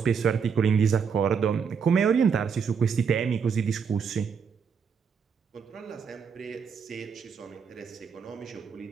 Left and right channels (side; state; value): left; quieter; 6.4 dB